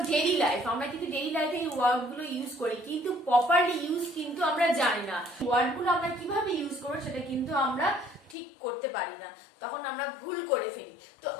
daily life, আমরা কিন্তু ডেইলি লাইফে এই ওয়ার্ডগুলো ইউজ করি কিন্তু প্রপারলি ইউজ কিন্তু আমরা জানি না। ওয়ার্ডগুলো আমরা কিভাবে ইউজ করব সেটা কিন্তু আমরা ঠিক করতে পারি না, তখন আমরা ভুল করে ফেলি। তো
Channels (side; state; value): right; drops out; at 8.3 s